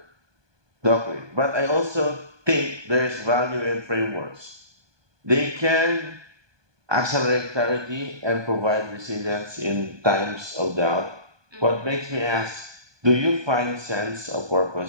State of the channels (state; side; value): late; left; 1.2 ms